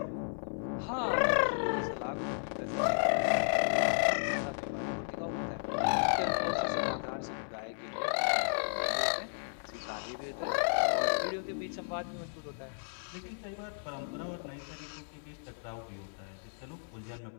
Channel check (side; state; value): right; silent; 55 dB below the other